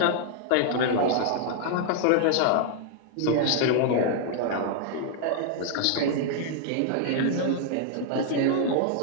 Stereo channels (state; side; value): different; both; correlation 0.00